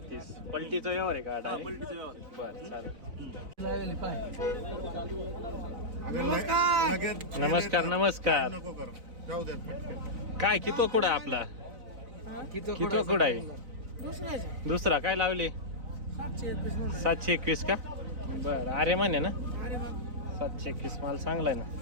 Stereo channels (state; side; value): late; left; 3.9 ms